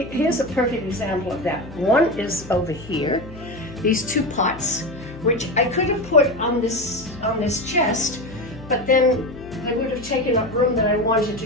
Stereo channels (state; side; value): noise; left; hum, 17 dB below the sound